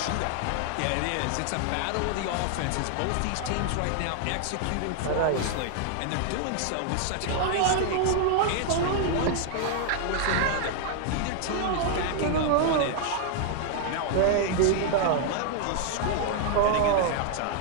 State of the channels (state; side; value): different; both; correlation 0.00